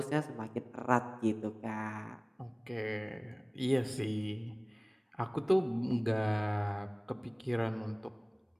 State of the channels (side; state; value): both; identical; correlation 1.00